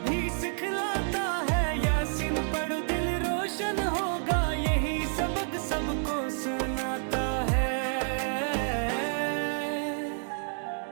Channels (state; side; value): silent; left; digital silence